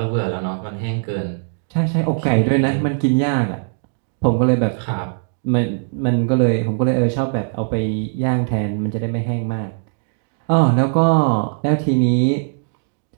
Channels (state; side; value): silent; left; digital silence